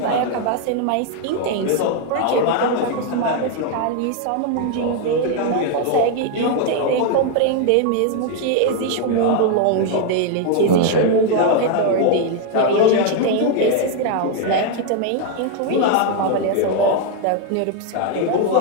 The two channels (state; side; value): different; both; correlation 0.01